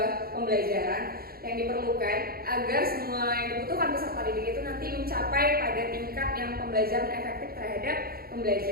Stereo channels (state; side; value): late; left; 0.44 ms